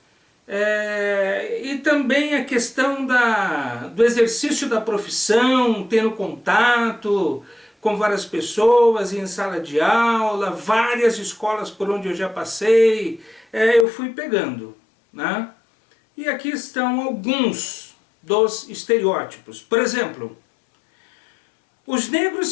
e também a questão do exercício da profissão, tendo contato com várias pessoas em sala de aula, várias escolas por onde eu já passei, eu fui pegando, né? E aqui estão alguns dos estereótipos. Por exemplo, os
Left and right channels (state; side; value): drops out; right; at 13.9 s